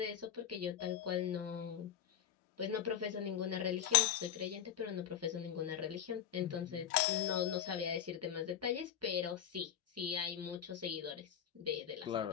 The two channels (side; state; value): right; quieter; 9.7 dB